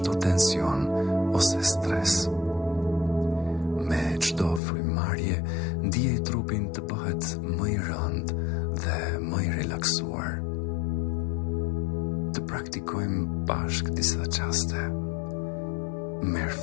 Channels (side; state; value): right; drops out; at 4.6 s